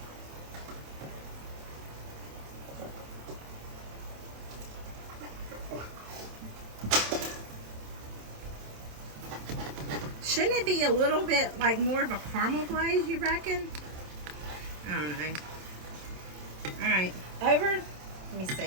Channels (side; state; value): left; late; 27 ms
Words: Shouldn't it be a little bit like more of a caramel glaze, you reckon? I don't know. All right, over. Let me